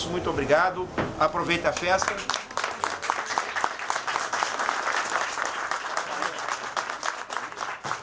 muito obrigado. Aproveita a festa.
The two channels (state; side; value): identical; both; correlation 1.00